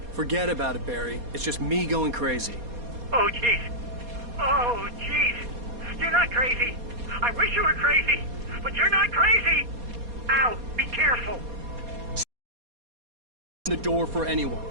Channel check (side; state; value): left; late; 4.2 ms